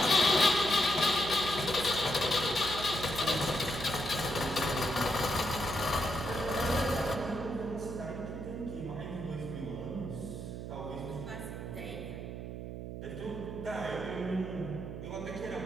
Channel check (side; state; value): right; noise; hum, 7 dB below the sound